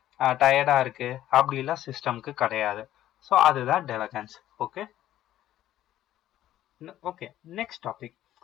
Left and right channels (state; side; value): quieter; right; 13.0 dB